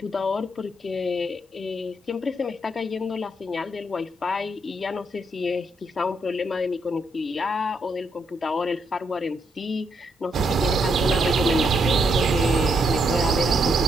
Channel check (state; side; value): normal; both; correlation 0.77